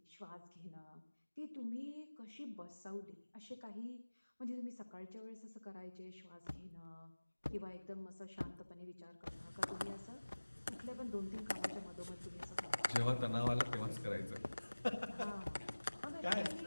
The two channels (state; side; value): inverted; both; correlation -1.00